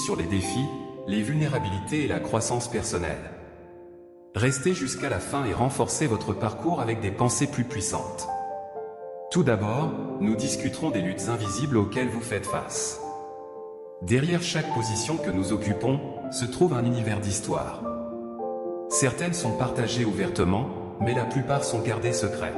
les défis, les vulnérabilités et la croissance personnelle. Restez jusqu'à la fin et renforcez votre parcours avec des pensées plus puissantes. Tout d'abord, nous discuterons des luttes invisibles auxquelles vous faites face. Derrière chaque position que nous occupons, se trouve un univers d'histoire. Certaines sont partagées ouvertement, mais la plupart sont gardées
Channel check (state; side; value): identical; both; correlation 1.00